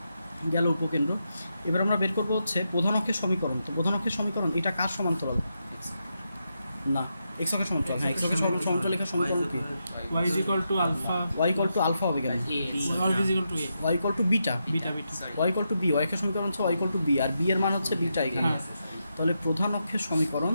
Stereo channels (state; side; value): inverted; both; correlation -0.85